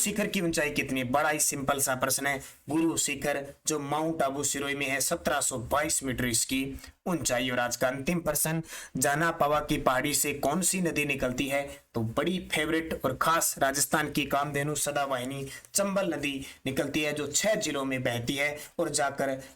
की ऊंचाई कितनी है? बड़ा ही सिंपल सा प्रश्न है। गुरु शिखर जो माउंट आबू सिरोही में है 1722 मीटर इसकी ऊंचाई। और आज का अंतिम प्रश्न, जाना पावा की पहाड़ी से कौन सी नदी निकलती है? तो बड़ी फेवरेट और खास राजस्थान की कामधेनु सदावाहिनी चंबल नदी निकलती है, जो 6 जिलों में बहती है और जाकर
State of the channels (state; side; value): identical; both; correlation 1.00